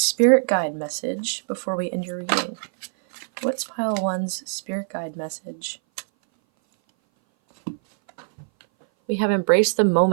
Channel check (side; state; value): left; silent; 59 dB below the other